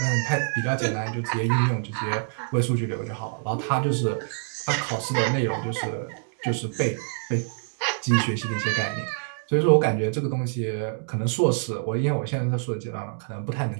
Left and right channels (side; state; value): left; silent; 58 dB below the other